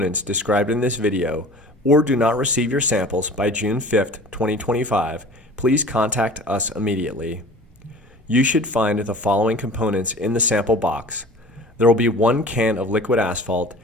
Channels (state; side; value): normal; both; correlation 0.42